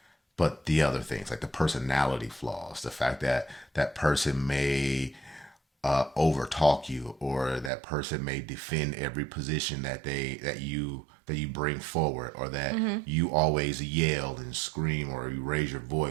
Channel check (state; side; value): drops out; left; at 7.7 s